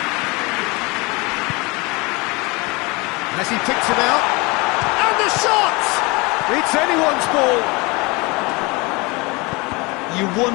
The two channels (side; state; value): right; quieter; 26.2 dB